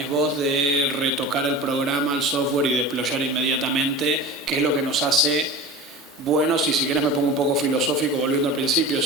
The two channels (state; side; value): normal; both; correlation 0.33